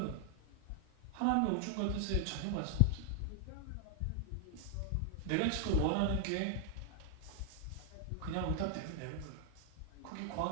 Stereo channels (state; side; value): different; both; correlation 0.00